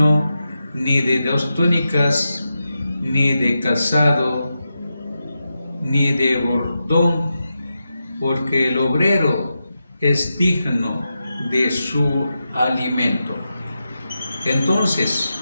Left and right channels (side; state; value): both; inverted; correlation -0.89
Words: ni de 2 túnicas, ni de calzado, ni de bordón, porque el obrero es digno de su alimento. Entonces